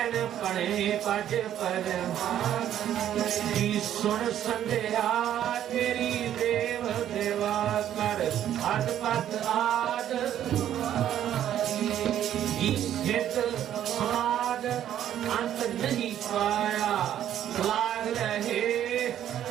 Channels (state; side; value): quieter; left; 11.0 dB